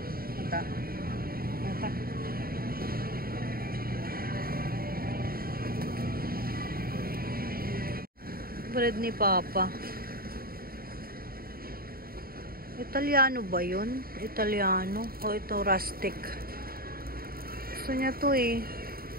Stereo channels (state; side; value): late; left; 0.43 ms